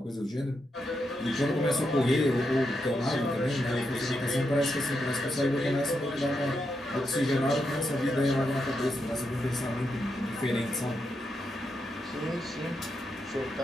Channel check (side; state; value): both; normal; correlation 0.84